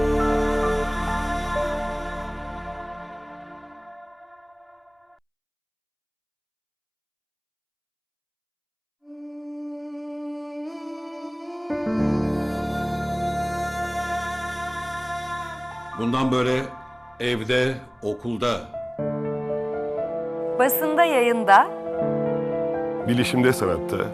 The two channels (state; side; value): identical; both; correlation 1.00